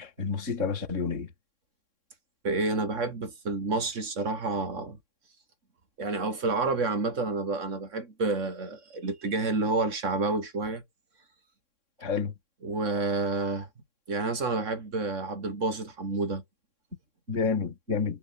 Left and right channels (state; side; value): late; left; 3.6 ms